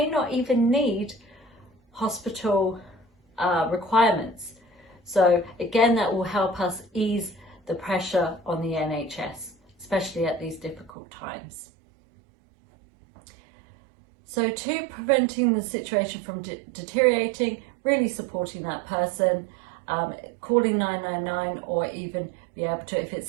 not even need hospital requirements. So again, that will help us ease the pressure on the NHS, especially at these difficult times. So to preventing the situation from deteriorating, really supporting that person, calling 999 or even be able to, if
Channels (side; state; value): left; drops out; at 10.9 s